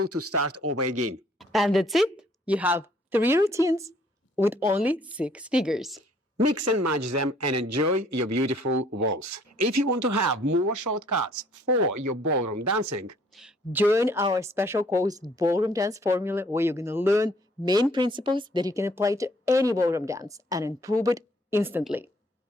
to start over again. And that's it. You have 3 routines with only 6 figures. Mix and match them and enjoy your beautiful waltz. If you want to have more shortcuts for your ballroom dancing, join our special course Ballroom Dance Formula, where you're going to learn main principles that you can apply to any ballroom dance and improve it instantly.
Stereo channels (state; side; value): normal; both; correlation 0.61